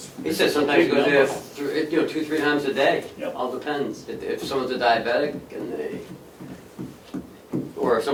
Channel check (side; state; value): both; identical; correlation 1.00